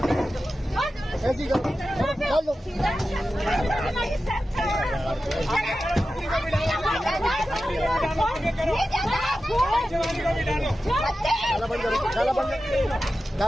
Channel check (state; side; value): normal; both; correlation 0.93